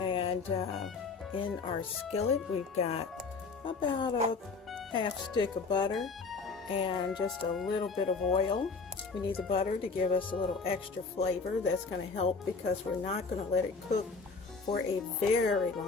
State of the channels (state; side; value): quieter; right; 4.4 dB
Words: And in our skillet, we've got about a half stick of butter and just a little bit of oil. We need the butter to give us a little extra flavor. That's going to help because we're not going to let it cook for a very